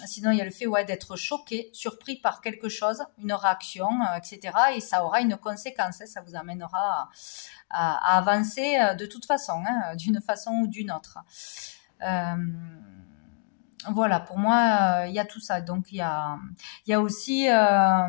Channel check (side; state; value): right; silent; digital silence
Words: Sinon, il y a le fait d'être choqué, surpris par quelque chose, une réaction, etc. Et ça aura une conséquence, ça vous amènera à avancer de toute façon, d'une façon ou d'une autre. Voilà, pour moi, il y a tout ça. Donc, il y a aussi,